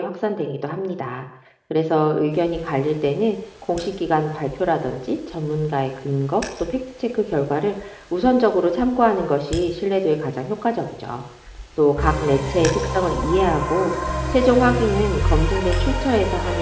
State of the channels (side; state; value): both; identical; correlation 1.00